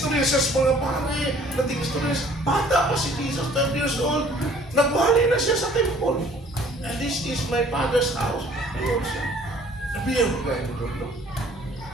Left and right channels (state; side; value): normal; both; correlation 0.55